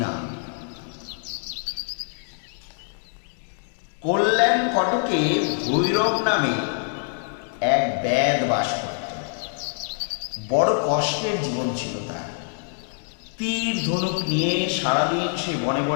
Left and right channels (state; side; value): silent; right; 62 dB below the other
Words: কল্যাণ কটকে ভৈরব নামে এক ব্যাদ বাস করত। বড় কষ্টের জীবন ছিল তার। তীর ধনুক নিয়ে সারাদিন সে বনে